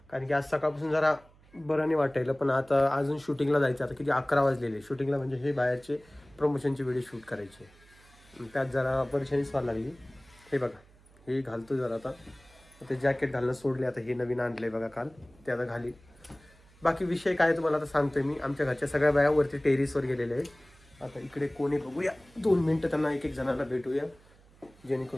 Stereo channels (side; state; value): right; noise; hum, 27 dB below the sound